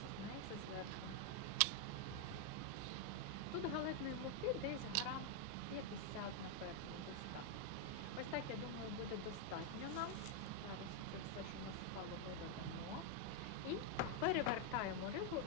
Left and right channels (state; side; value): different; both; correlation 0.00